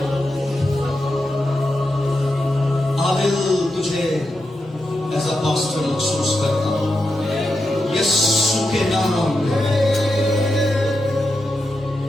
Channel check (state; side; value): normal; both; correlation 0.87